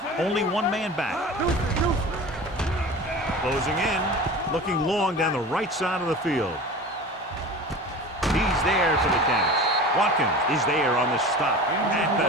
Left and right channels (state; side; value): normal; both; correlation 0.35